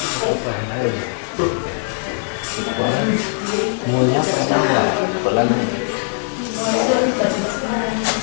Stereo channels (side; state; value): right; silent; digital silence